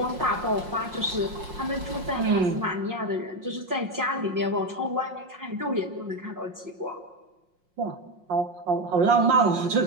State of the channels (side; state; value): left; late; 5.6 ms